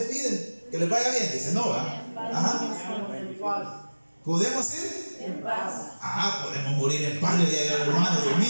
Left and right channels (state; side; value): inverted; both; correlation -1.00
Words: Que les vaya bien, dice, no, ¿verdad? ¿Podemos ir? En paz. Podemos morir en paz, le digo, hermano, Dios